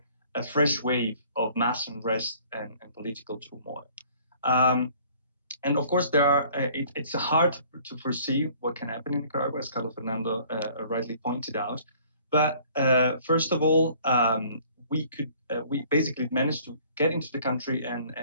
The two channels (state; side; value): inverted; both; correlation -0.55